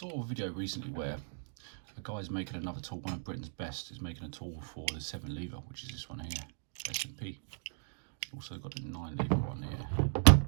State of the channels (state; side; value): silent; left; digital silence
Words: a video recently where a guy's making another tool. One of Britain's best is making a tool for the 7 lever, which is this one here, S&P. Also got a 9 lever one here,